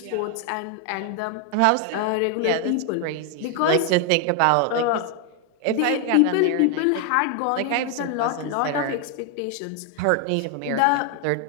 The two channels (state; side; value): different; both; correlation 0.01